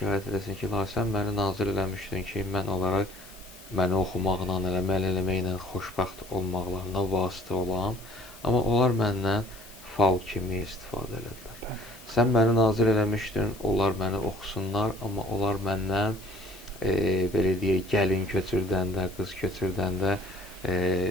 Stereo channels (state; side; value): noise; left; hiss, 20 dB below the sound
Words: eləsin ki, ilahi, sən məni nazil eləmişdin ki, mən olaraq məni oxumaqla, əməl eləməklə xoşbəxt olmaqlarına vasitə olam, amma onlar məndən fal kimi istifadə elədilər. Sən məni nazil eləmişdin, onlar məni oxusunlar, amma onlar məndən belə deyək, gəlin köçürdəndə, qız köçürdəndə,